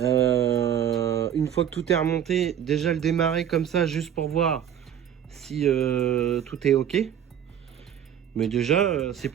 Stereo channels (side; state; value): left; quieter; 9.6 dB